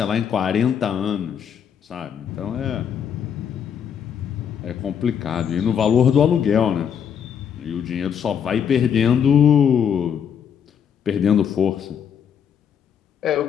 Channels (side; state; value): right; quieter; 8.0 dB